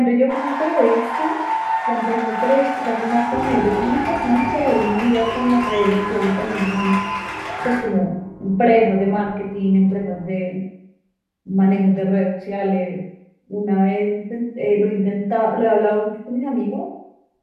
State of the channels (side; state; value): both; identical; correlation 1.00